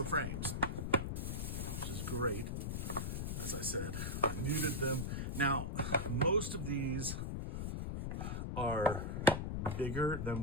frames, which is great. As I said, I muted them. Now, most of these are bigger than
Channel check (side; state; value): left; noise; rumble, 2 dB below the sound